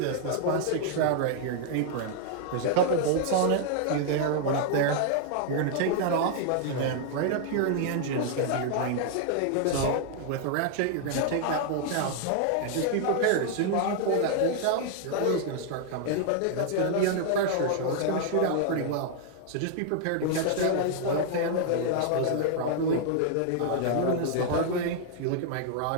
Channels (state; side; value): different; both; correlation 0.00